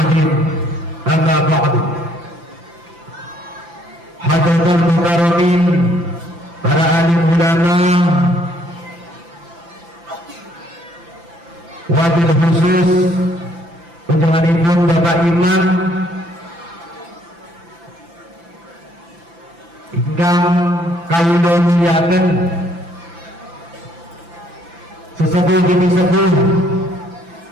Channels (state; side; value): late; left; 5.9 ms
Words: Amma ba'du. Hadirin mukarramin, para alim ulama, wabil khusus undanganipun Bapak Imam ingkang kawula muliaken, sesepuh demi sepuh